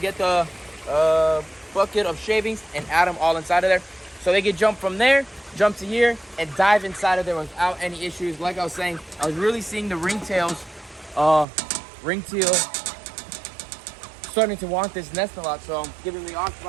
the bucket of shavings and add them all inside of there. So they can jump from there, jump to here, and dive inside of there without any issues. Like I was saying, I was really seeing the ringtail starting to want this nest a lot, so I'm giving the option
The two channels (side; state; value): left; drops out; at 11.5 s